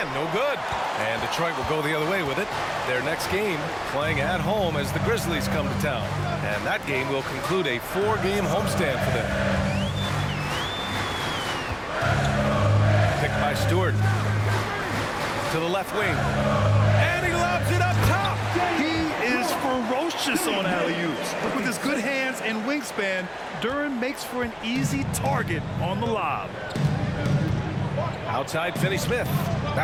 no good. And Detroit will go the other way with it. Their next game playing at home as the Grizzlies come to town. And that game will conclude a 4-game homestand for them. Picked by Stewart. To the left wing. And he lobs it up top. He is ferocious on alley-oops. With his good hands and wingspan, Duren makes for an easy target on the lob. Outside, Finney Smith.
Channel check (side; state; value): both; identical; correlation 1.00